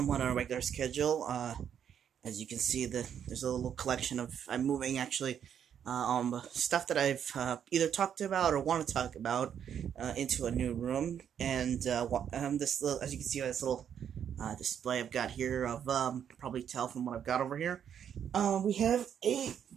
on a regular schedule. As you can see, there's a little collection of I'm moving actually stuff that I've either talked about or want to talk about into a new room, and this little, as you can see, this little display I've got here of probably tell from what I've got over here. We have a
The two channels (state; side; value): quieter; left; 8.7 dB